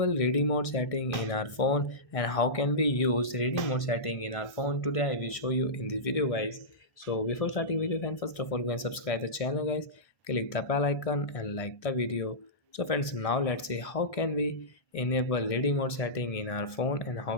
reading mode setting in our phone and how can we use reading mode setting in our phone. Today I will show you in this video guys. So before starting video friend, first of all go and subscribe the channel guys, click the bell icon and like the video. So friends, now let's see how can we enable reading mode setting in our phone and how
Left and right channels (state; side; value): late; right; 1.2 ms